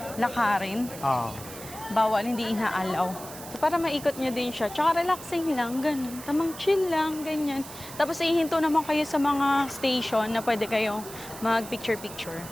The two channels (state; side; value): noise; right; hiss, 14 dB below the sound